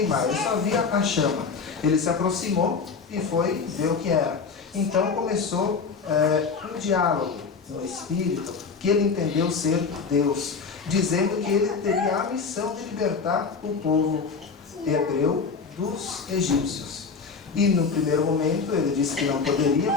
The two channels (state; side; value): quieter; right; 5.1 dB